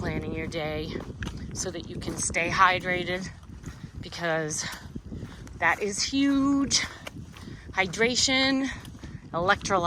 your day so that you can stay hydrated, because that is huge. Hydration,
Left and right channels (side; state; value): both; identical; correlation 1.00